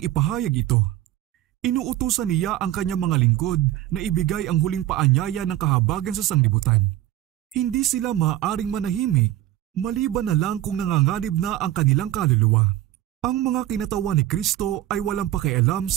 ipahayag ito? Inuutusan niya ang kanyang mga lingkod na ibigay ang huling paanyaya ng kahabagan sa sanglibutan. Hindi sila maaaring manahimik, maliban na lang kung nanganganib na ang kanilang kaluluwa. Ang mga kinatawan ni Kristo ay walang pakialam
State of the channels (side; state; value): left; quieter; 13.7 dB